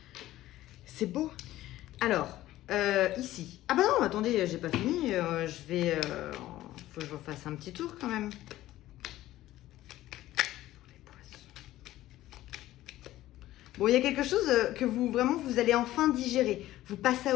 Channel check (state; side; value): quieter; right; 15.1 dB